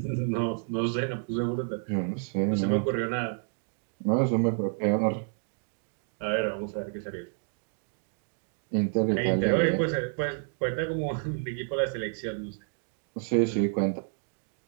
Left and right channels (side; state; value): left; silent; 58 dB below the other